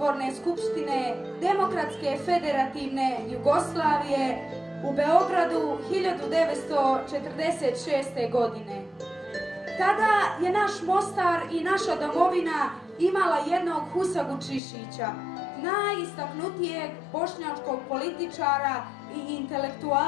skupštine Demokratske federativne Jugoslavije u Beogradu 1946. godine. Tada je naš Mostar i naša domovina imala jednog Husagu Čišića, najistaknutijeg bošnjačkog političara i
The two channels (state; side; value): drops out; right; at 14.6 s